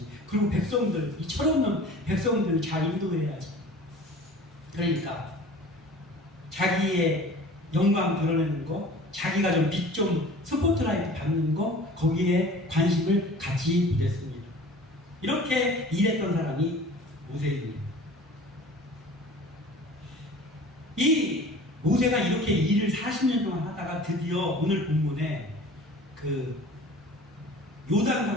그리고 백성들, 이 철없는 백성들을 잘 인도해야지. 그러니까 자기의 영광 드러내는 거, 자기가 좀 빛 좀 스포트라이트 받는 거, 거기에 관심을 갖지 못했습니다. 이렇게 일했던 사람이 모세입니다. 이 모세가 이렇게 일을 40년 동안 하다가 드디어 오늘 본문에 그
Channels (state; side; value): normal; both; correlation 0.43